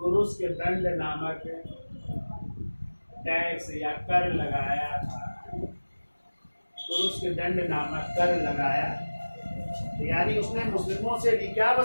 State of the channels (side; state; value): both; inverted; correlation -1.00